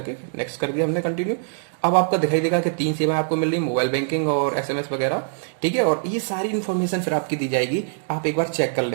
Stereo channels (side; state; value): left; silent; digital silence